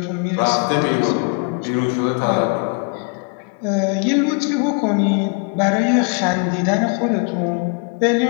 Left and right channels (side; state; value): right; quieter; 33.7 dB